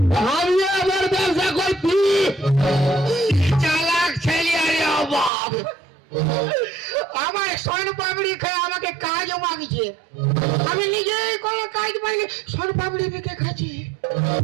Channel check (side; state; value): left; drops out; at 5.3 s